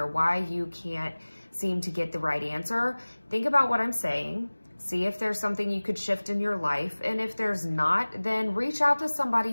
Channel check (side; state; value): both; inverted; correlation -1.00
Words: why you can't seem to get the right answer, think about what I'm saying. See if there's something you could shift in your life. And if there's not, then reach out to